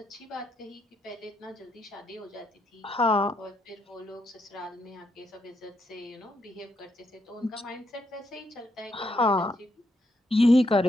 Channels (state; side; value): normal; both; correlation 0.78